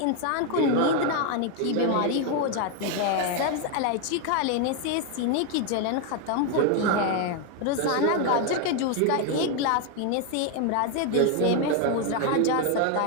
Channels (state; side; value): different; both; correlation 0.01